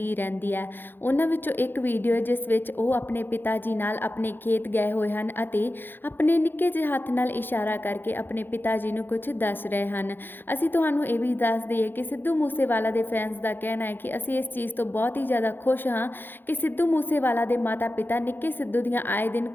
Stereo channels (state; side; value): late; right; 0.097 ms